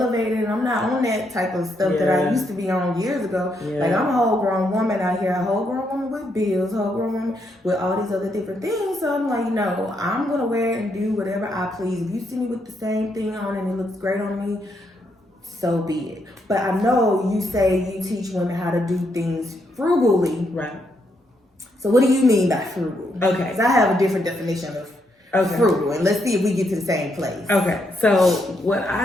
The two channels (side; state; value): both; normal; correlation 0.77